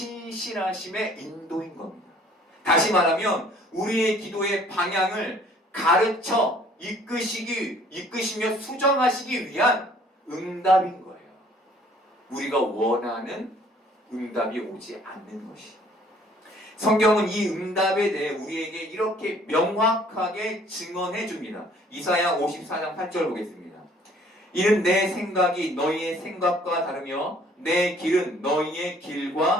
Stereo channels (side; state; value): both; normal; correlation 0.57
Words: 인도인 겁니다. 다시 말하면 우리의 기도의 방향을 가르쳐 이끄시며 수정하시기 위한 응답인 거예요. 우리가 원하는 응답이 오지 않는 것이. 성경은 이 응답에 대해 우리에게 이렇게 명확하게 증언해 줍니다. 이사야 54장 8절 보겠습니다. 이는 내 생각이 너희의 생각과 다르며 내 길은 너희의